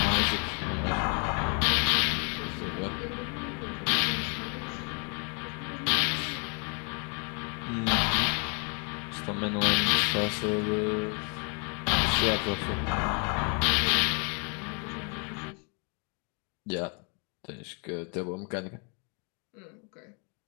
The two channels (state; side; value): quieter; right; 37.7 dB